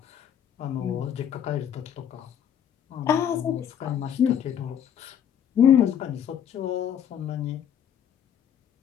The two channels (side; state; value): right; quieter; 9.1 dB